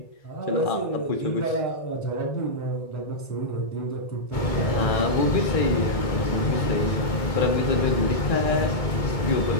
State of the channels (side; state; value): right; late; 2.2 ms